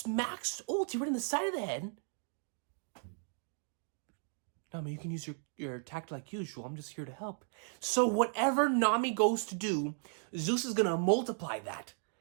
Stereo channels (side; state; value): left; silent; 54 dB below the other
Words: ulti right in the side of the head. Nami, you can use your attack like usual. I'm just here to help. So whatever Nami goes to do, Zeus is going to multiply that.